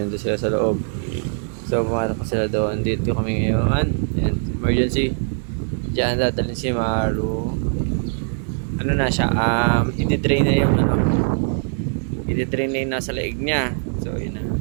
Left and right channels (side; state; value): left; silent; 65 dB below the other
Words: Doon sila sa loob. So, pumasok pa sila doon. Dito kami ngayon. And emergency. Diyan dadalhin si Maru. Ano na siya? I-drain na yung ano. I-drain na yung nasa leeg niya. So, yun na.